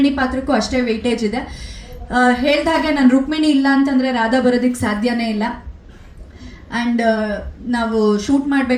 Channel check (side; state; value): both; identical; correlation 1.00